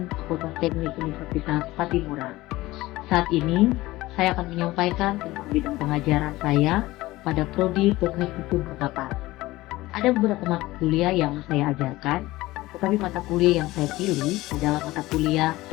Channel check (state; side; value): quieter; right; 18.5 dB